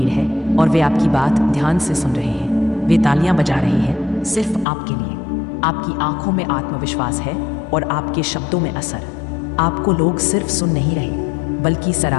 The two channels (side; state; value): right; drops out; at 4.7 s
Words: है और वे आपकी बात ध्यान से सुन रहे हैं। वे तालियां बजा रहे हैं सिर्फ आपके लिए। आपकी आंखों में आत्मविश्वास है और आपके शब्दों में असर। आपको लोग सिर्फ सुन नहीं रहे बल्कि